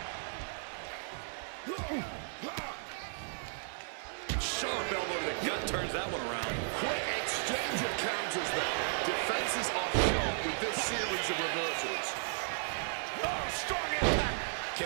Sharp elbow to the gut turns that one around. Quick exchange of counters there. Defenses are sharp with this series of reversals. Oh, strong impact.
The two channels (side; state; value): left; silent; digital silence